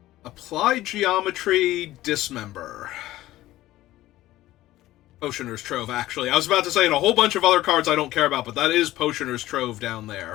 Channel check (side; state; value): right; quieter; 15.7 dB